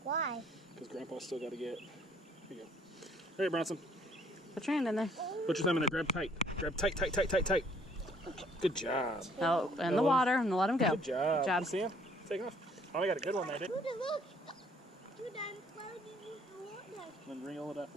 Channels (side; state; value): both; normal; correlation 0.62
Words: Why? Because Grandpa's still got to get. Here you go. All right, Bronson. Put your hand in there. Put your thumb in there. Grab tight. Grab tight, tight, tight, tight, tight. Good job. Oh, in the water and let him go. Good job. Good job. You see him? Taking off. Oh, we got a good one there, didn't we? Dude, look. Dude, I'm floating in the water. Then reel it up a